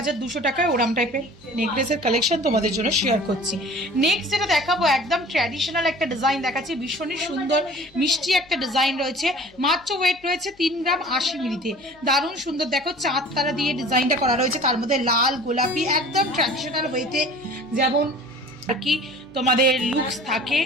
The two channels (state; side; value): noise; left; hum, 28 dB below the sound